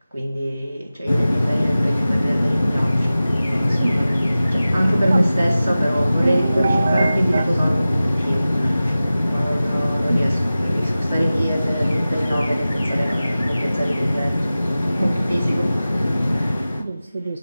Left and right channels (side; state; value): both; inverted; correlation -0.96